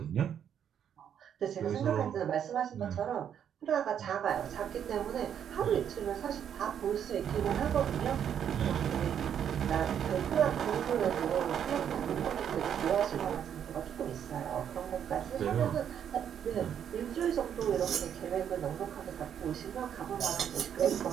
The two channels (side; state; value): left; quieter; 8.9 dB